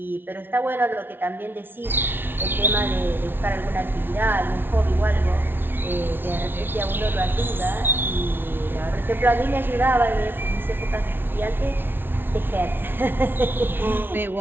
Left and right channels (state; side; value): late; left; 0.10 ms